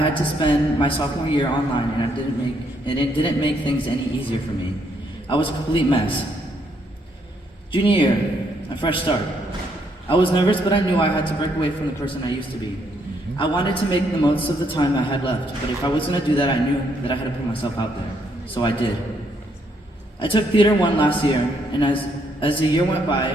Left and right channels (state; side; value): normal; both; correlation 0.73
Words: to spend my sophomore year online, and it didn't make things any easier for me. I was a complete mess. Junior year, a fresh start. I was nervous, but I knew I had to break away from the person I used to be. I wanted to make the most of the time I had left, but if I was going to do that, I knew that I had to put myself out there. So I did. I took Theater 1 last year, and as the year went by,